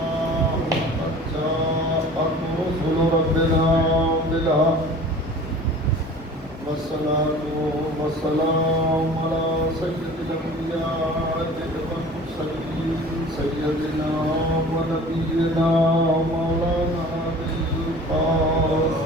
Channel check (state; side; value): normal; both; correlation 0.43